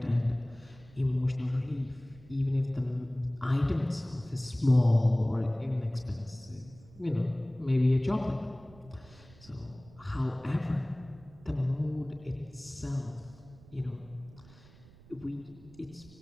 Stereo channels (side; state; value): right; noise; rumble, 23 dB below the sound